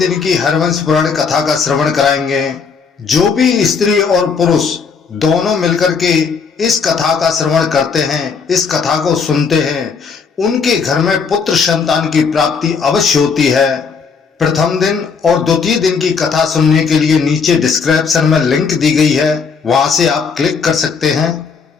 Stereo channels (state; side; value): quieter; right; 5.6 dB